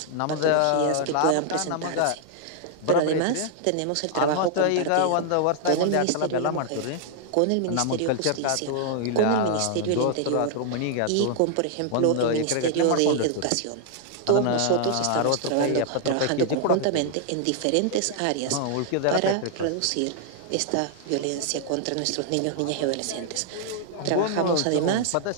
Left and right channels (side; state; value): both; different; correlation 0.00